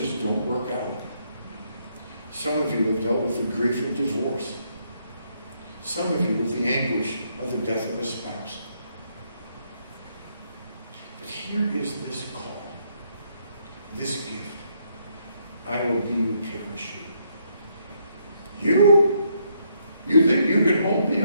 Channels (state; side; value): inverted; both; correlation -0.74